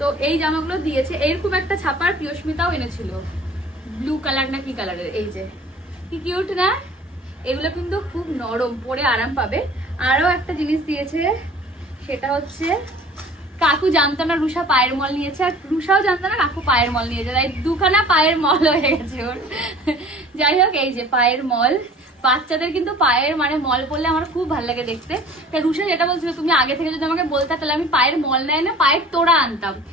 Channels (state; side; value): normal; both; correlation 0.46